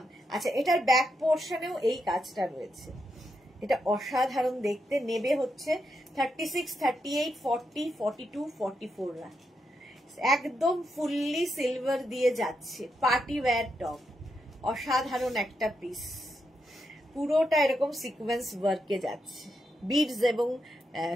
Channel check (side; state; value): both; normal; correlation 0.83